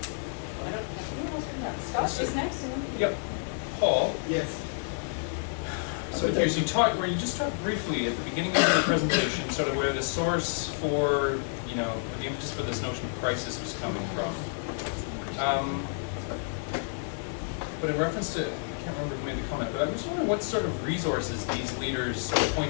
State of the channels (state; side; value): silent; right; digital silence